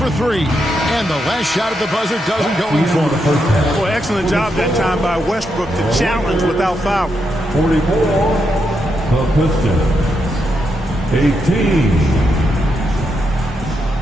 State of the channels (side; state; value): both; normal; correlation 0.82